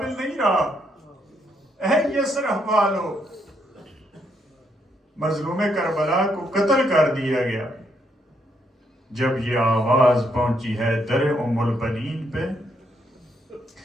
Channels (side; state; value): both; normal; correlation 0.75